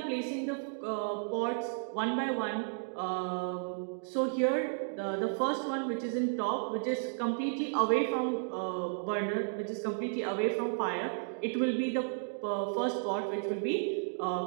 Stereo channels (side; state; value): left; silent; digital silence